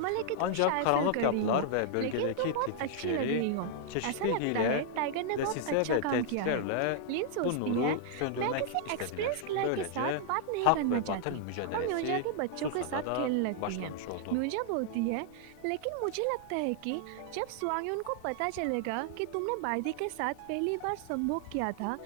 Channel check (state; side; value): different; both; correlation -0.01